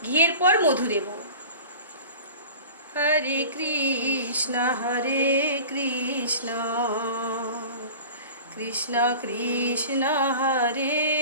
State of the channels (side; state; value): both; inverted; correlation -0.38